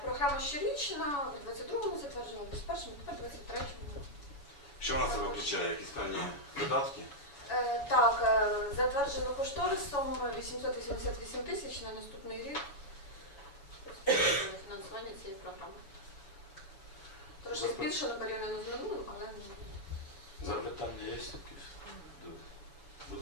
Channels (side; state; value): right; late; 7.1 ms